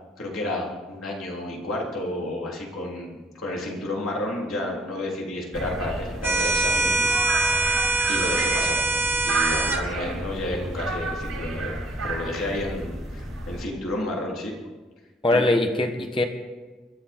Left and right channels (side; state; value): both; normal; correlation 0.62